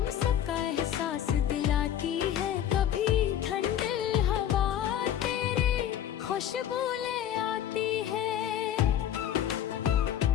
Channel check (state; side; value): quieter; right; 10.4 dB